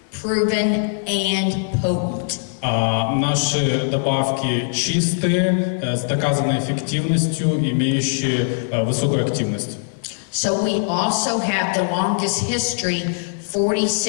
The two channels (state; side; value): silent; right; digital silence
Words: proven, and potent. Наши добавки чистые, с доказанной эффективностью, имеющие высокую активность. So we also have the longest history,